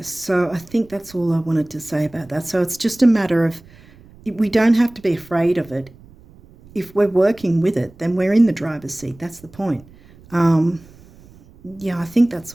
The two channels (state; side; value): noise; right; rumble, 24 dB below the sound